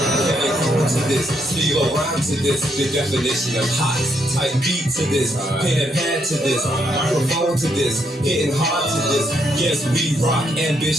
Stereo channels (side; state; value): both; normal; correlation 0.75